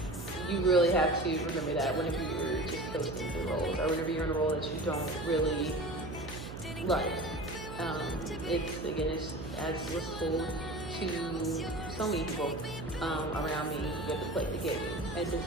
you really have to remember that whenever you're just posting through roles, or whenever you're in a role that you don't really like. It's as was told to so many people around me, you have to play the game at Disney,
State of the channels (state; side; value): noise; right; hum, 11 dB below the sound